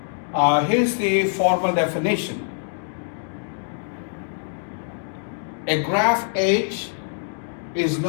Here's the formal definition. A graph H is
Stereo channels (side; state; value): right; silent; digital silence